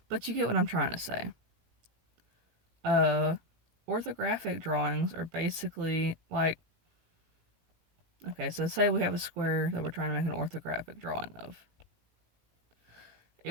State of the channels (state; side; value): late; left; 18 ms